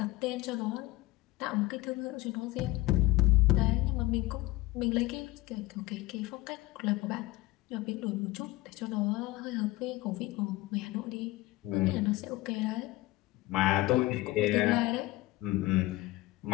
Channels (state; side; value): quieter; right; 18.5 dB